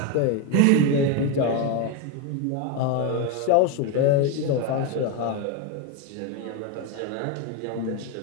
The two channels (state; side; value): different; both; correlation 0.03